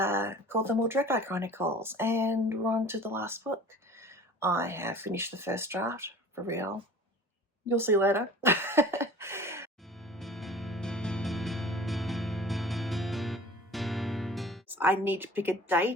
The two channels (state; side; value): normal; both; correlation 0.44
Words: The Mordrecai Chronicles. And we're on to the last book. I have finished the first draft, for real. You'll see later. I need to pick a